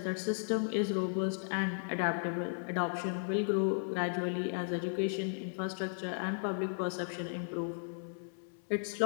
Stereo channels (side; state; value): right; silent; 54 dB below the other